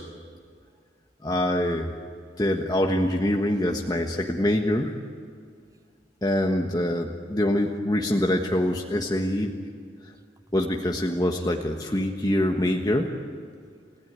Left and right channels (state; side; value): normal; both; correlation 0.78